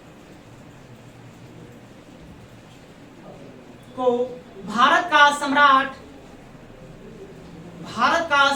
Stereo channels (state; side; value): identical; both; correlation 1.00